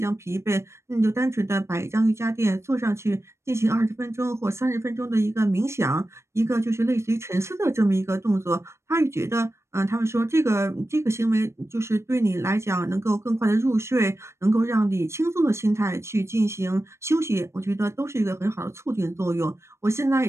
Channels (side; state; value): left; late; 0.13 ms